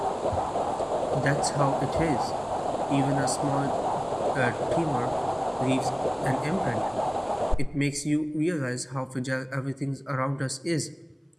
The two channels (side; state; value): both; identical; correlation 1.00